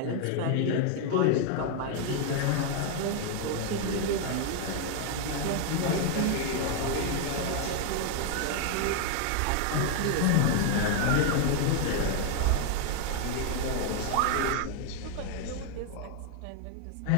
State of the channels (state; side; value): different; both; correlation 0.00